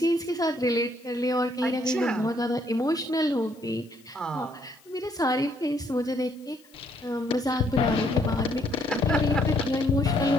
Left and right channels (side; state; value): left; noise; hiss, 28 dB below the sound